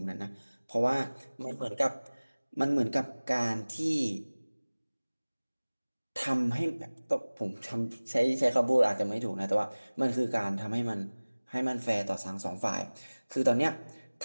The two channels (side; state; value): both; inverted; correlation -1.00